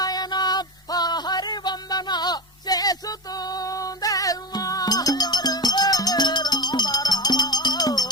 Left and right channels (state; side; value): normal; both; correlation 0.23